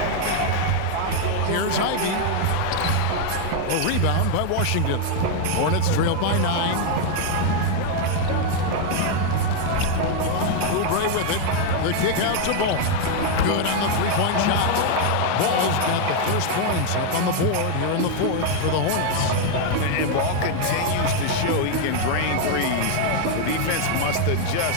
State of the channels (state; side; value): different; both; correlation 0.00